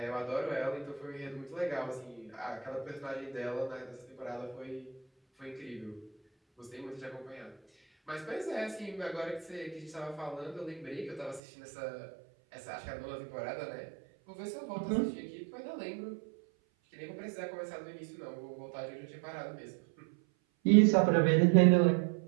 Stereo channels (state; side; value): drops out; left; at 11.4 s